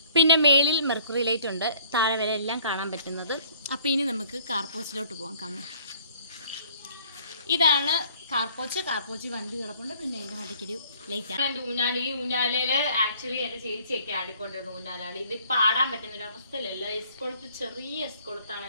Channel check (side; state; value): both; inverted; correlation -0.57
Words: പിന്നെ മേളിൽ മെർക്കുറി ലൈറ്റ് ഉണ്ട്. താഴെ വരെ എല്ലാം കാണാൻ പറ്റുന്നത്. അപ്പോൾ ഇനി നമുക്ക് കാർപോച്ചിലോട്ട് പോകാം. കാണാം, ഇതാണ് കാർപോച്ച് വണ്ടി കിടപ്പുണ്ട്. പിന്നെ എൻ്റെ മണ്ടയ്ക്കൊരു ലൈറ്റാണ്. എൻ്റെ ഊഞ്ഞാലയിൽ ആക്ച്വലി എൻ്റെ ചേച്ചിയൊക്കെ ആടിക്കൊണ്ടിരുന്നു ഊഞ്ഞാലാളി. ഇത് പാടാൻ പറ്റുന്നൊരു അവസ്ഥയിലല്ല. എസ്കൊളുത്ത്, ചെറിയ എസ്കൊളുത്താണ്